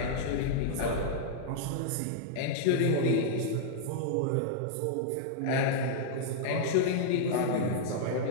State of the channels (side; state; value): both; different; correlation -0.01